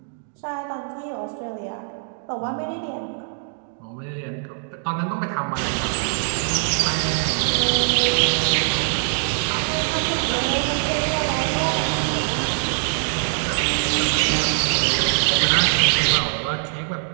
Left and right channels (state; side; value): silent; left; 60 dB below the other